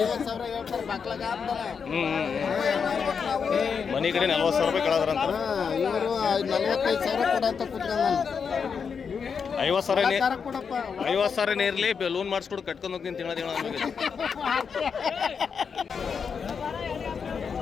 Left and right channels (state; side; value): quieter; right; 6.2 dB